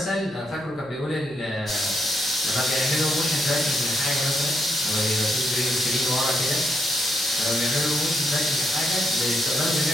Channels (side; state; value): left; noise; hum, 29 dB below the sound